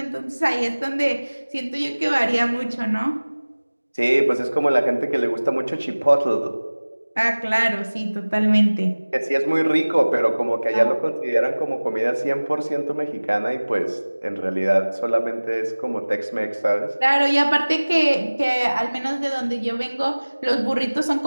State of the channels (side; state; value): both; inverted; correlation -1.00